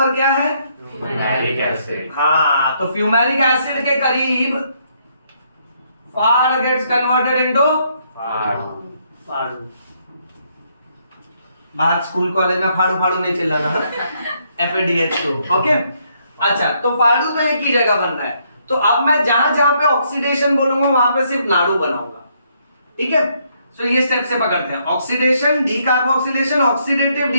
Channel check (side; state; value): both; inverted; correlation -0.72